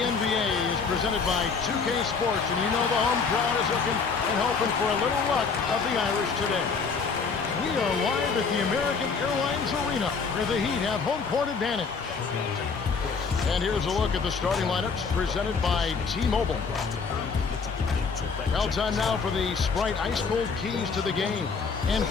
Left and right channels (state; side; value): quieter; right; 5.2 dB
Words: is presented by 2K Sports, and you know the home crowd is looking and hoping for a little luck of the Irish today. We are live at the American Airlines Arena, where the Heat have home court advantage. And here's a look at the starting lineups presented by T-Mobile. Well, time now for the Sprite Ice Cold Keys to the game. And